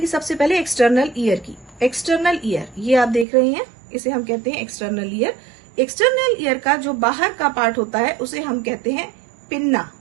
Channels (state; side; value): drops out; left; at 3.2 s